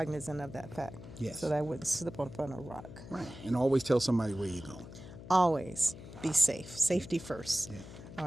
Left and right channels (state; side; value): noise; left; hum, 14 dB below the sound